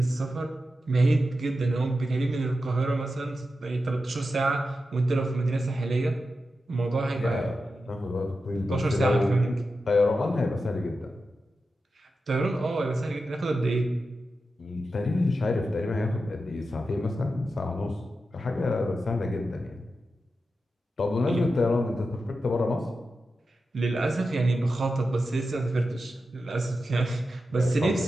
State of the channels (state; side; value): normal; both; correlation 0.90